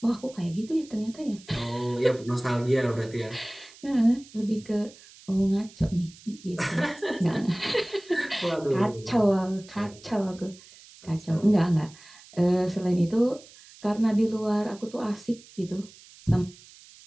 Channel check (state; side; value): noise; right; hiss, 22 dB below the sound